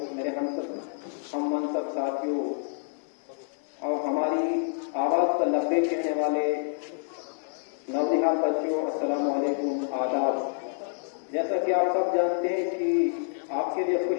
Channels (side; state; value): right; silent; digital silence